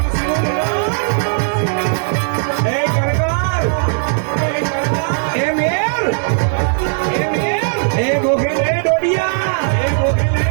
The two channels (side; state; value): left; silent; digital silence